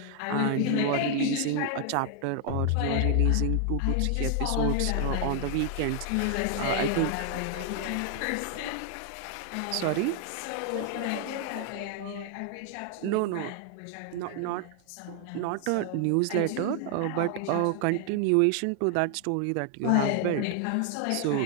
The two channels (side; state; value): both; different; correlation 0.00